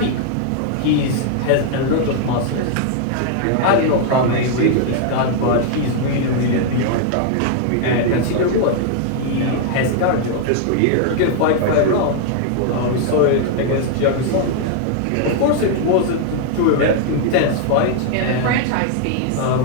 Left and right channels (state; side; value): different; both; correlation 0.00